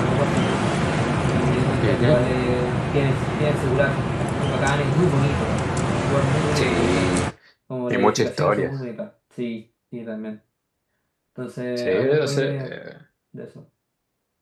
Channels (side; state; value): both; identical; correlation 1.00